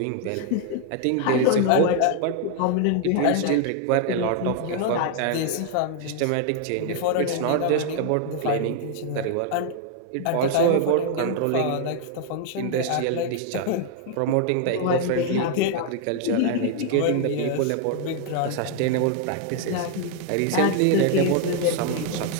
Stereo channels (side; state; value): both; different; correlation 0.00